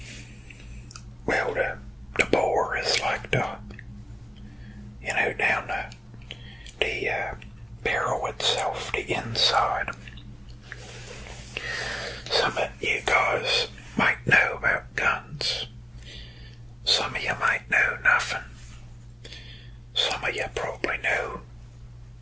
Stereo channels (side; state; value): both; normal; correlation 0.97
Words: well, the bore is like down the barrel itself, the inside. Some of you guys might know about guns. Some of you might know nothing. Some of you probably know